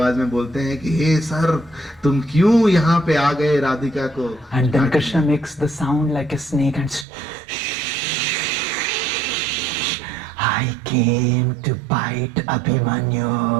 में बोलते हैं कि हे सर, तुम क्यों यहाँ पे आ गए राधिका को। And then Krishna makes the sound like a snake and I came to bite Abhimanyu.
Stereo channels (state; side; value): drops out; left; at 7.1 s